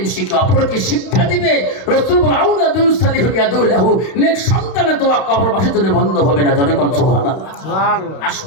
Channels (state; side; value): late; right; 31 ms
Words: শিখে অপরকে শিক্ষা দিবে, রাসূল বলেন আউলাদুন সালিহুন ইয়াদুলাহু, নেক সন্তানের দোয়া কবরবাসীর জন্য বন্ধ হবে না। জনে কোন সুবহানাল্লাহ। সুবহানাল্লাহ।